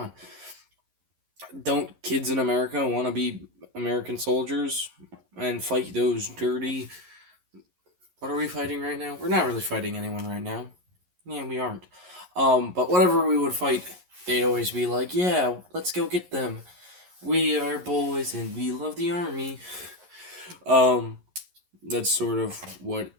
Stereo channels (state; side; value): late; left; 11 ms